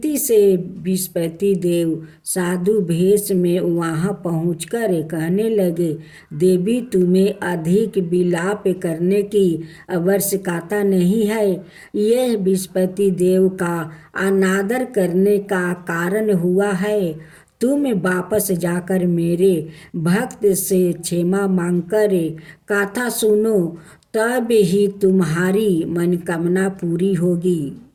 से बृहस्पति देव साधु भेष में वहाँ पहुंचकर कहने लगे, देवी, तुम्हें अधिक विलाप करने की आवश्यकता नहीं है। यह बृहस्पति देव का अनादर करने का कारण हुआ है। तुम वापस जाकर मेरे भक्त से क्षमा मांगकर कथा सुनो, तब ही तुम्हारी मनोकामना पूरी होगी।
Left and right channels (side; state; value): both; identical; correlation 1.00